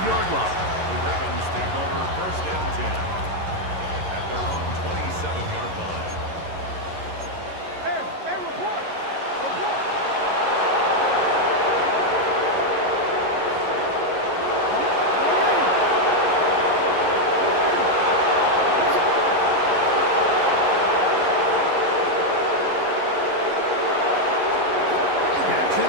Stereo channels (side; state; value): left; late; 11 ms